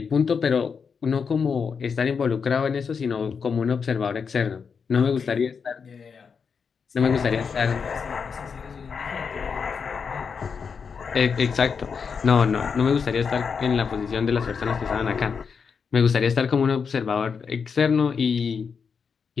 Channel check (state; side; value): quieter; right; 6.0 dB